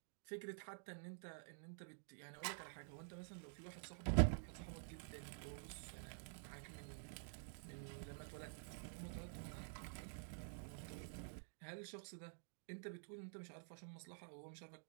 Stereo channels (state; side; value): silent; left; digital silence